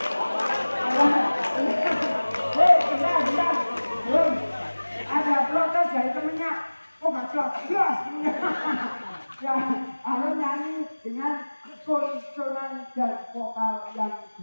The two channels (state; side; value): inverted; both; correlation -1.00